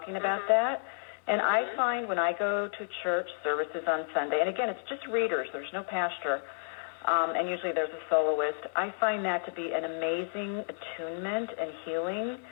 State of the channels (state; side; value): silent; right; digital silence